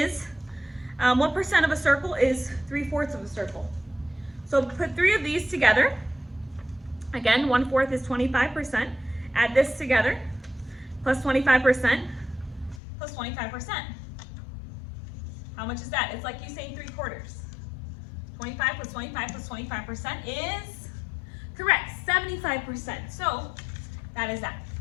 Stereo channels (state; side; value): drops out; right; at 12.8 s